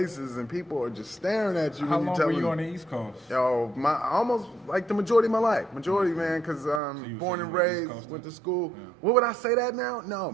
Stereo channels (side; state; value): left; drops out; at 6.8 s